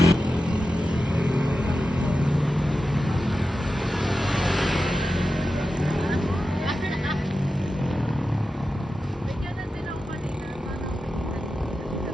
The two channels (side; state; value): both; normal; correlation 0.92